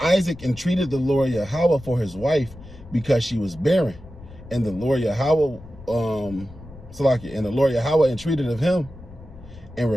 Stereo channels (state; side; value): noise; left; rumble, 18 dB below the sound